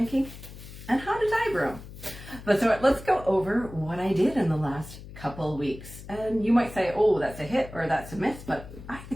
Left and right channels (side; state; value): left; noise; hum, 15 dB below the sound